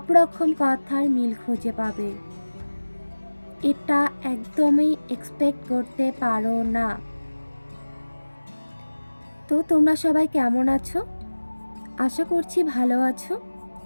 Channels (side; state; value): both; inverted; correlation -1.00